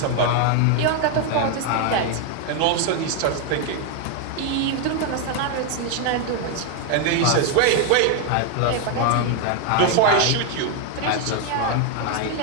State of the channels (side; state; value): both; different; correlation 0.01